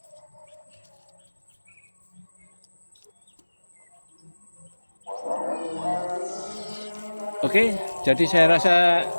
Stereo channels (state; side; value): inverted; both; correlation -1.00